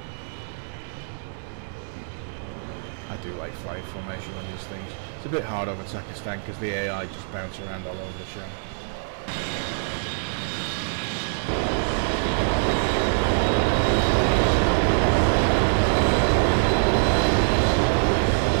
I do like flight formation on these things. It's a bit hard over Takistan because the AI just bounce around all over the show.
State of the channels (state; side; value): silent; left; 62 dB below the other